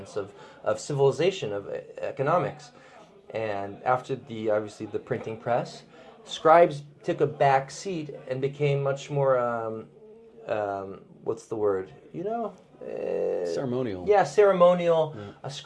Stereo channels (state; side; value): identical; both; correlation 1.00